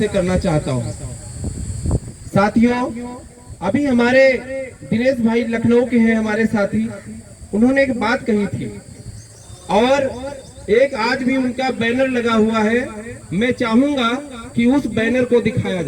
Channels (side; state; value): both; identical; correlation 1.00